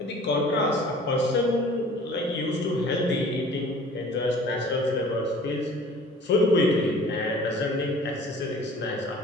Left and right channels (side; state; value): both; normal; correlation 0.48